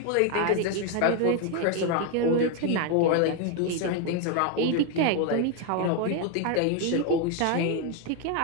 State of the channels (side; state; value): both; different; correlation 0.01